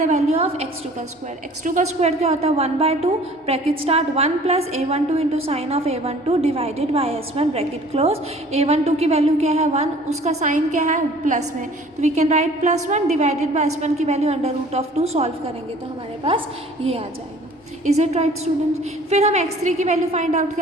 the value of x2 का स्क्वायर। x2 का स्क्वायर क्या होता है, 1/2 bracket start 1 plus A12 into sine of A12 divided by S1 bracket close. A12 की वैल्यू क्या है 1, उसका साइन क्या है प्लस में, तो we can write +1 divided by S1 की value under root of 2। Solve करेंगे तो हमारे पास ये आ जाएगा। Is it right student? फिर हम x3 की वैल्यू फाइंड आउट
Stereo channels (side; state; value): both; normal; correlation 0.50